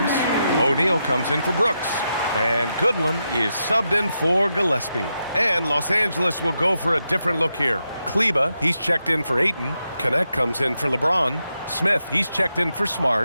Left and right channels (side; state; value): both; inverted; correlation -0.85